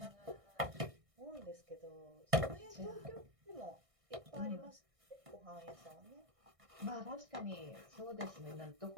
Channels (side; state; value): left; late; 1.6 ms